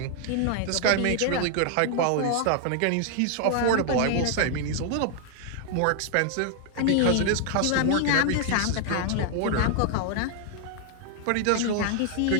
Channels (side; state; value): both; different; correlation 0.00